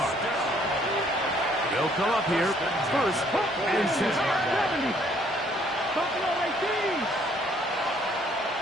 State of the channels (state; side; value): normal; both; correlation 0.63